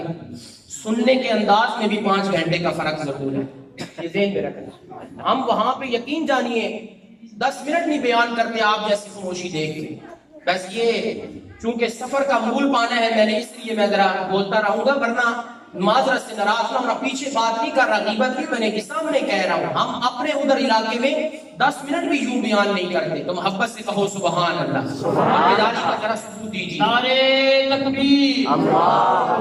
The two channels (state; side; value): identical; both; correlation 1.00